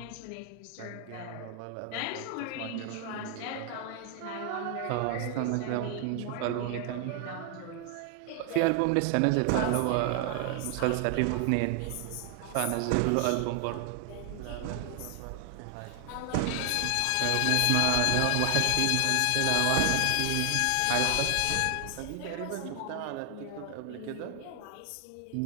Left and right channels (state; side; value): different; both; correlation 0.00